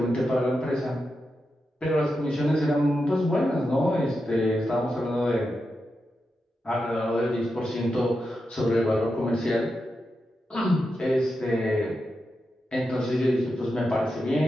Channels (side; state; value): both; normal; correlation 0.88